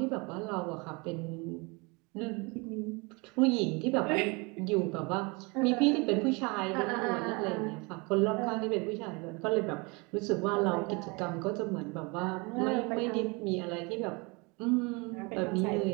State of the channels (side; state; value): left; quieter; 28.5 dB